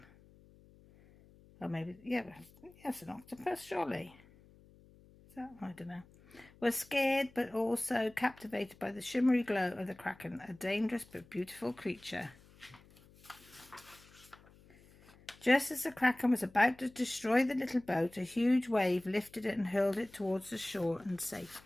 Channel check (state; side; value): noise; left; hum, 25 dB below the sound